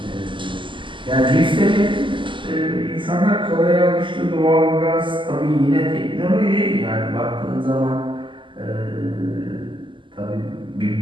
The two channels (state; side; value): late; left; 0.24 ms